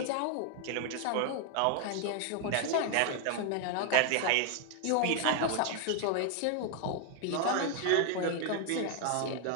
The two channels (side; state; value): both; different; correlation 0.00